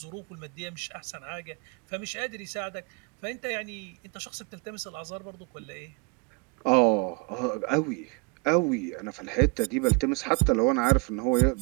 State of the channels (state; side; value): quieter; left; 29.8 dB